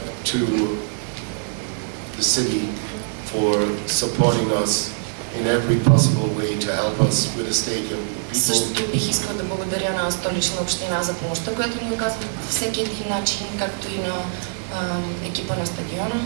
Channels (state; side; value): silent; left; 64 dB below the other